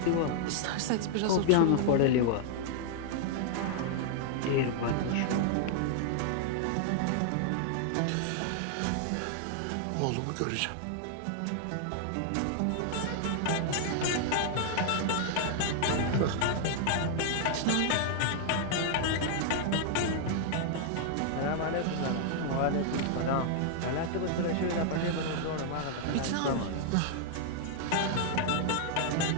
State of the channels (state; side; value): different; both; correlation 0.00